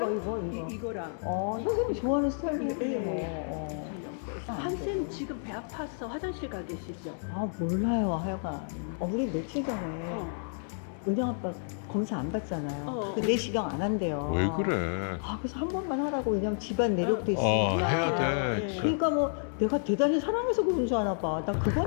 이거. 이거랑. 선생님 좋아하는 스타일이네. 이거, 예. 함쌤 지금 배 아파서 화장실 가 계시죠? 몰라요, 하여간. 우리 며칠 전에 은영 아빠 검사 안 받잖아요. 그 내시경 안 한대요. 왜 그래? 그래서 한 번만 하라고. 왜냐면 집안 내력도 있으니까. 해야 돼요. 예. 그러니까 뭐 내가 대단히 사랑해서 그런 줄 아나 봐. 나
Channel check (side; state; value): right; silent; digital silence